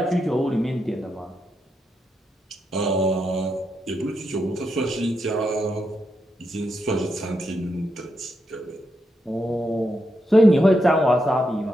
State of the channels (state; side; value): normal; both; correlation 0.83